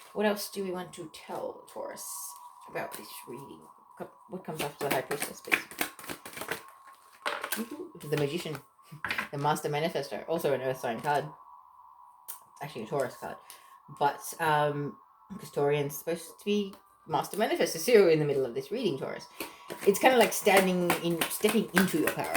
What else do we want to tell Taurus about this reading? What comes after the High Priestess, please? The Magician, the Master Manifestor, also an Earth sign card. It's actually a Taurus card, but because Taurian's supposed to be Master Manifestor, so you're in the middle of this reading, Taurus. It's kind of like stepping into your power.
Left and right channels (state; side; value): identical; both; correlation 1.00